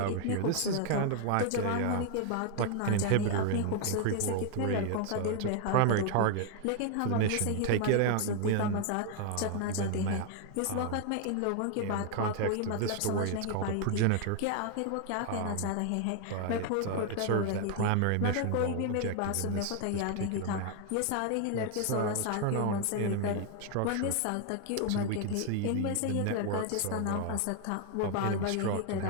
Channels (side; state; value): both; different; correlation 0.00